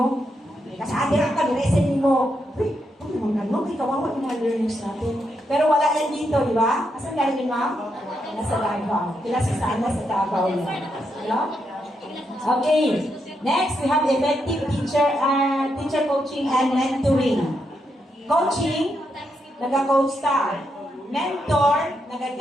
Kasi adirang ka, niresin mo. Uy, ano, may kawawa yung mga learners natin. Pero wala yan dito, di ba? Asan galing yun, ma'am? Nasa Davao. Kilasa saan? Nasa Davao yan. Hello? Okay. Next, we have effective teacher coaching and mentoring. Coaching, nag-coach ka. Mentor,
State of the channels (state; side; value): normal; both; correlation 0.81